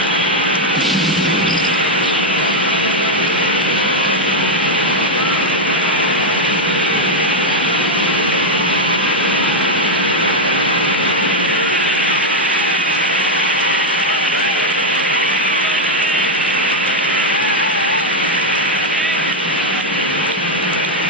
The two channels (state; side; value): normal; both; correlation 0.02